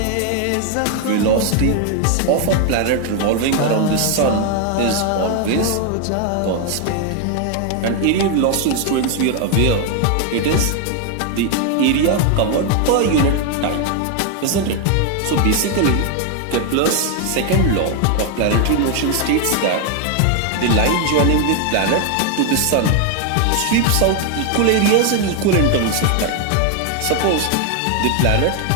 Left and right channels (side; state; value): both; different; correlation 0.01